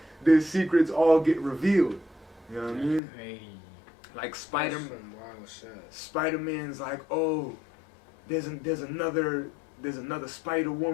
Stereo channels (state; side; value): drops out; right; at 3.0 s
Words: their secrets all get revealed. You know what I mean? Crazy. Like Spider-Man's like, oh, there's another Spider